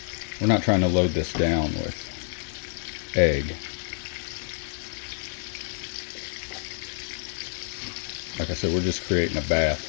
We're not trying to load this down with egg. Like I said, we're just creating a bath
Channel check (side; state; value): right; silent; 60 dB below the other